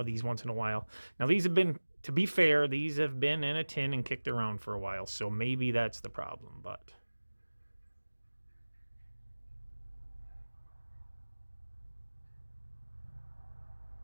these once in a while. Now these have been, to be fair, these have been in a tin and kicked around for a while, so maybe that's the problem, but...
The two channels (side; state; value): both; inverted; correlation -1.00